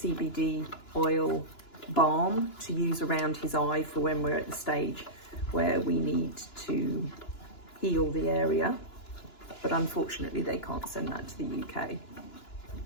oil balm to use around his eye for when we're at the stage where we need to heal the area, but unfortunately they can't send that to the UK.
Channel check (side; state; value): right; late; 2.9 ms